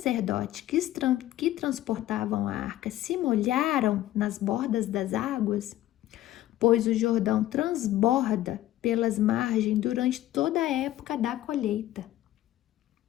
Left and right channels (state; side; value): quieter; right; 14.2 dB